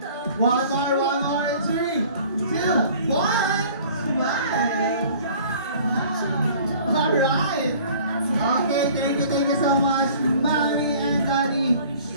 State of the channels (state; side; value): inverted; both; correlation -0.49